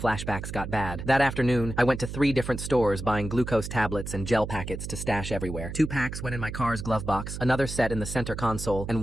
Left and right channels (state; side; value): noise; right; hum, 7 dB below the sound